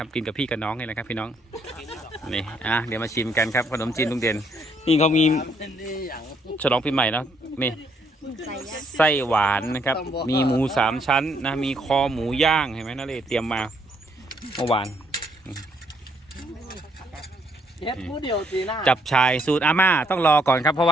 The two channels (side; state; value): both; normal; correlation 0.70